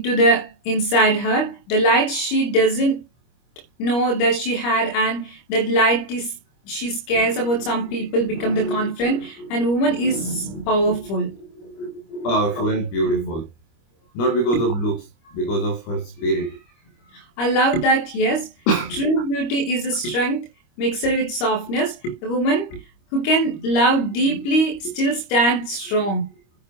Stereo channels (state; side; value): late; right; 25 ms